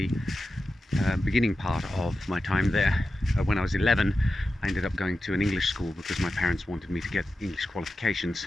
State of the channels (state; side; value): normal; both; correlation 0.92